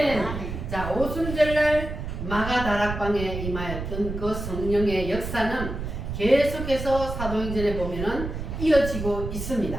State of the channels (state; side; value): noise; right; rumble, 6 dB below the sound